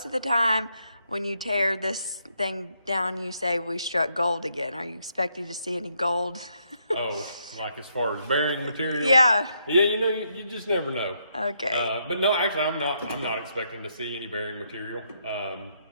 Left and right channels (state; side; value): inverted; both; correlation -0.76